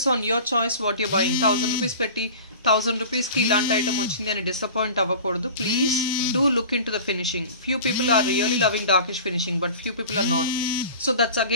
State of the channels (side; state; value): both; inverted; correlation -0.38